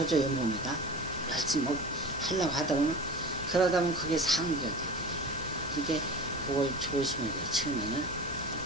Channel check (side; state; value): both; normal; correlation 0.34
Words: 몸에다 열심히 하려고 하다 보면 그러다 보면 그게 상기가 돼요. 그러니까 그걸 조심해야 돼요. 처음에는